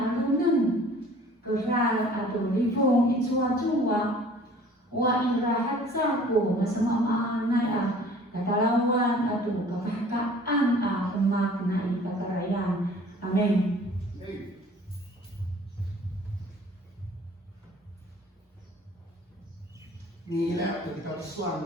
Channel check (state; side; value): normal; both; correlation 0.50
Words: nun. Keral atau lifong itsua-tsua. Wa ira hatsa ko masama maanay katalawan atau kakakaan kemaknai kakarayan. Amen. 你呢？有比较算